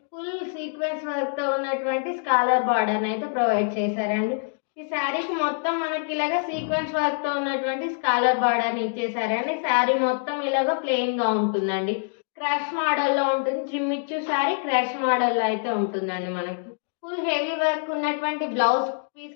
ఫుల్ సీక్వెన్స్ వర్క్ తో ఉన్నటువంటి స్కాలర్ బార్డర్ అయితే ప్రొవైడ్ చేశారండి. ఈ శారీకి మొత్తం మనకి ఇలాగ సీక్వెన్స్ వర్క్ తో ఉన్నటువంటి స్కాలర్ బార్డర్ ఇచ్చేసారండి. శారీ మొత్తం ఇలాగ ప్లెయిన్ గా ఉంటుందండి. క్రష్ మోడల్లో ఉంటుంది. జిమ్మిచ్చు శారీ క్రష్ మోడల్లో అయితే ఉంటుందండి. మనకి ఫుల్ హెవీ వర్క్ ఉన్నటువంటి బ్లౌజ్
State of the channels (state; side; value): silent; right; digital silence